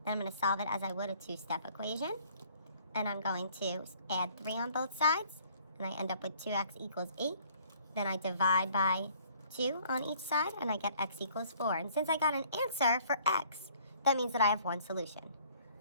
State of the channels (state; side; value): inverted; both; correlation -0.59